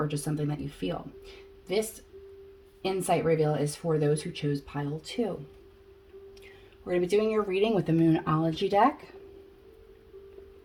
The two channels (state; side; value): identical; both; correlation 1.00